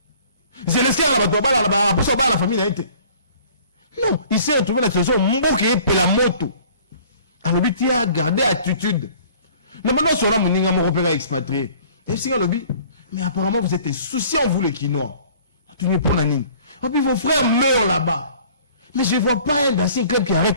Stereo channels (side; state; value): both; inverted; correlation -0.52